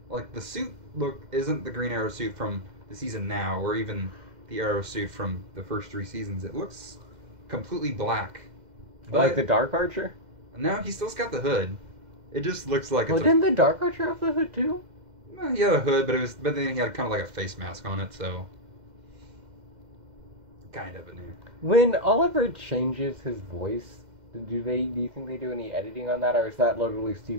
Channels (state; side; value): late; left; 2.1 ms